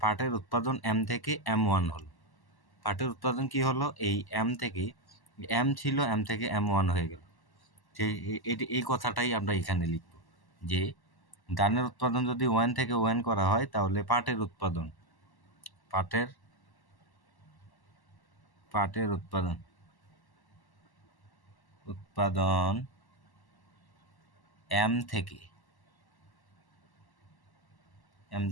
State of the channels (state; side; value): late; right; 1.1 ms